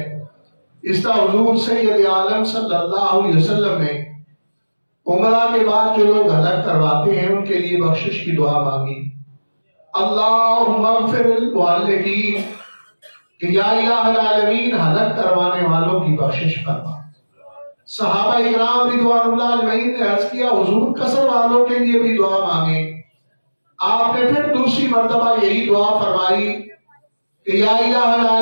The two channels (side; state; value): both; inverted; correlation -1.00